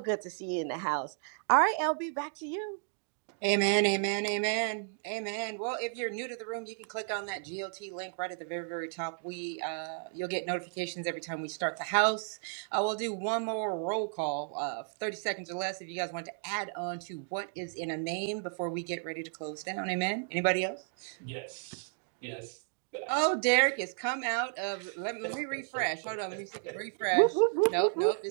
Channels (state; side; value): silent; left; digital silence